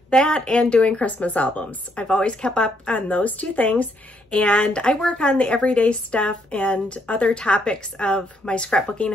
that and doing Christmas albums. I've always kept up on those two things, and I work on the everyday stuff and other topics of my scrapbooking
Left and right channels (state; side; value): normal; both; correlation 0.73